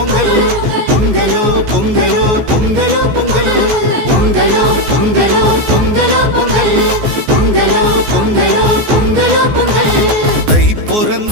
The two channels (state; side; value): late; left; 14 ms